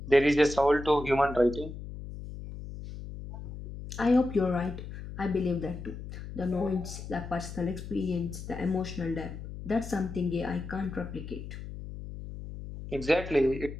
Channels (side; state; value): left; noise; hum, 10 dB below the sound